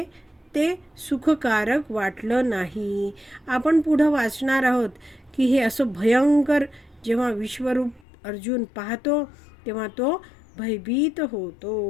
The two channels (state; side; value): drops out; right; at 8.1 s